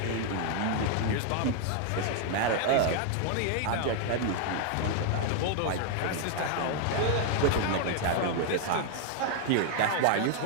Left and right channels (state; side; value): different; both; correlation 0.00